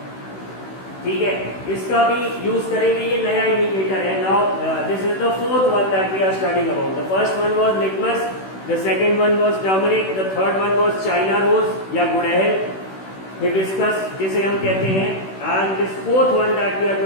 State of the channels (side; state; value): right; late; 16 ms